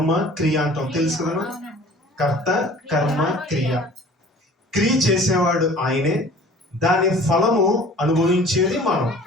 క్రియ అంటాం, తెలుసు కదా. కర్త, కర్మ, క్రియ. క్రియ చేసేవాడు ఆయనే, దాని ఫలము అనుభవించేది మనం.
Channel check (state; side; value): normal; both; correlation 0.48